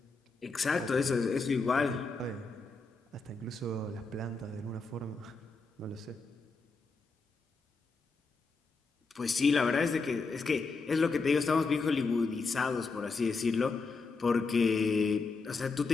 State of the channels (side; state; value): right; quieter; 4.1 dB